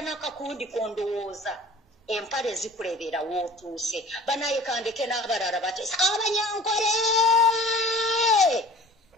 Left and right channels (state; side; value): normal; both; correlation 0.44